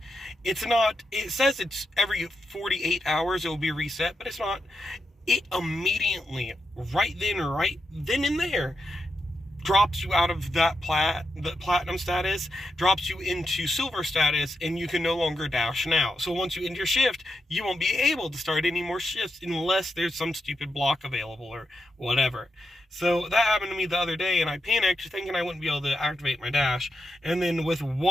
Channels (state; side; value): normal; both; correlation 0.86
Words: it says it's every 48 hours it will be reset, but it's not. It immediately, right then and there, drops you out of the platinum status, drops you into silver status, and you can no longer Dash now. So once you end your shift, you won't be able to start any more shifts unless there's some stupid block available or whatever. So that happened to me the other day, and I panicked thinking I wouldn't be able to activate my Dash. And then with